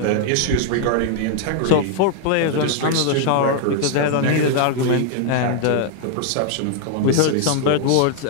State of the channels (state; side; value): different; both; correlation 0.00